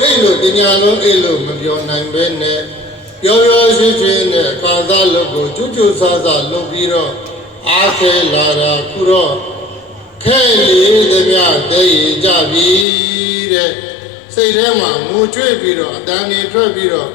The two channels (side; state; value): right; drops out; at 12.9 s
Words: အိတ်လို့တညလုံးအိတ်လို့မပြောနိုင်ပဲနဲ့ပြောရှိရှိနဲ့အခါသားလုပ်ကိုကျွတ်ကျွတ်ဆဆလုပ်ပြီးတော့အားခဲလာတာခုတော့ခဲလေးသမျှတည်ကြပြီတဲ့စိတ်ထဲမှာငိုကြွေးပြီးတော့အတန်နေထွက်ပြီးတော့